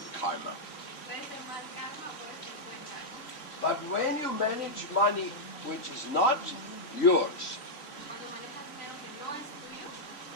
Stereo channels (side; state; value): right; late; 3.3 ms